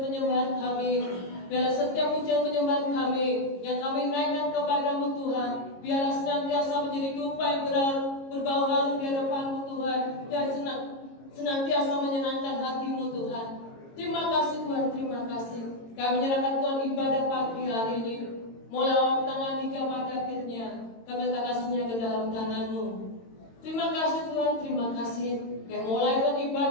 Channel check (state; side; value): late; right; 22 ms